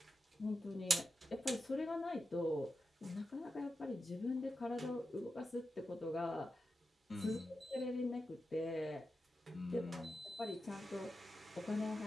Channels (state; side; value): normal; both; correlation 0.90